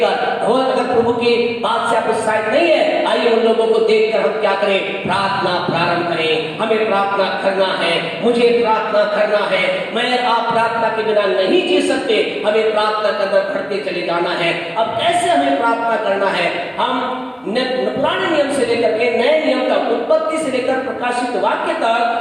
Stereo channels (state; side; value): identical; both; correlation 1.00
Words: और अगर प्रभु की बात से आप उत्साहित नहीं है, आइए उन लोगों को देखकर हम क्या करें? प्रार्थना प्रारंभ करें। हमें प्रार्थना करना है, मुझे प्रार्थना करना है। मैं आप प्रार्थना के बिना नहीं जी सकते। हमें प्रार्थना करना, बढ़ते चले जाना है। अब कैसे हमें प्रार्थना करना है? हम पुराने नियम से लेकर के नए नियम तक, उत्पत्ति से लेकर प्रकाशित वाक्य